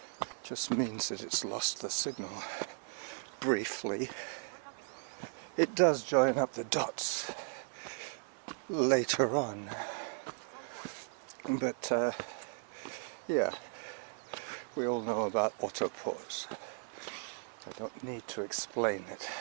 Just means that it's lost the signal briefly. It does join up the dots later on, but yeah, we all know about auto pause. I don't need to explain it.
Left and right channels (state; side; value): silent; left; digital silence